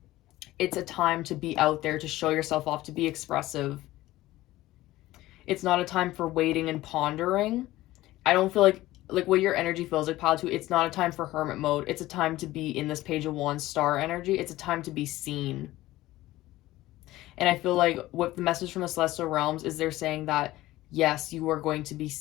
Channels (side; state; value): right; quieter; 16.8 dB